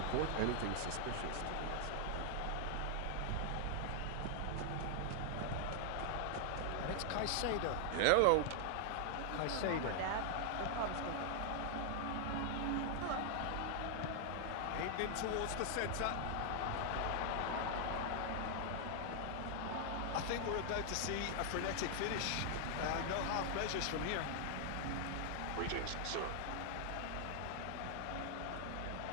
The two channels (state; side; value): different; both; correlation 0.00